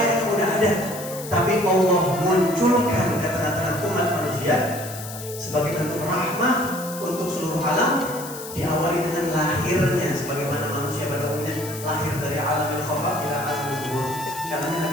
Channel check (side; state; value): left; noise; hiss, 12 dB below the sound